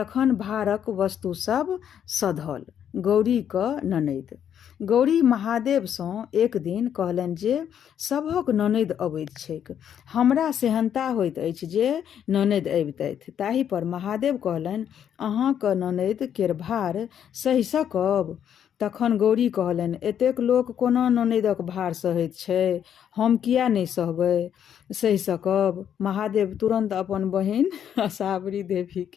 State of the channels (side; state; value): right; quieter; 9.1 dB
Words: भारक वस्तु सब सधल। गौरी क ननैद। गौरी महादेव सँ एक दिन कहलनि जे सभक ननैद अबैत छैक। हमरा सेहनता होइत अछि जे ननैद अबितथि। ताहि पर महादेव कहलनि, अहाँक ननैद केर भार सहि सकब? तखन गौरी कहलनि, एतेक लोक कोना ननैदक भार सहैत छै, हम किया नहि सहि सकब? महादेव तुरंत अपन बहिन असावरी देवी